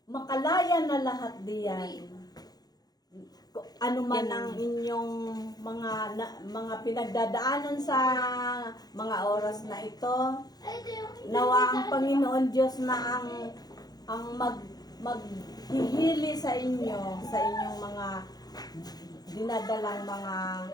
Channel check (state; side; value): late; right; 0.19 ms